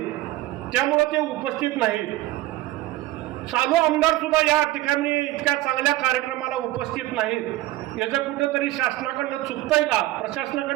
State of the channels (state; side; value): quieter; left; 16.6 dB